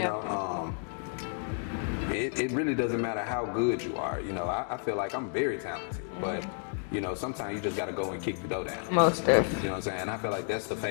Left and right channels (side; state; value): right; silent; 57 dB below the other